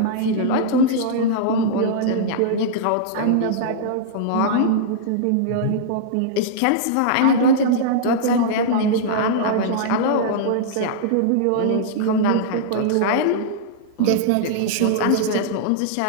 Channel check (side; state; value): both; different; correlation -0.02